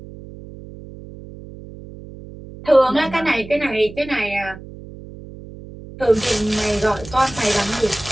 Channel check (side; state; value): right; noise; hum, 16 dB below the sound